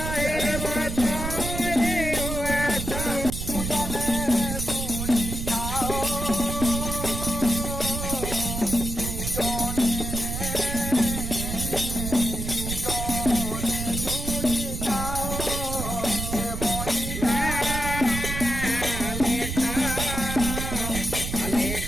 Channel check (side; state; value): right; noise; rumble, 4 dB below the sound